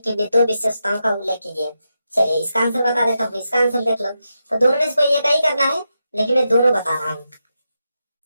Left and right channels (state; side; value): inverted; both; correlation -0.87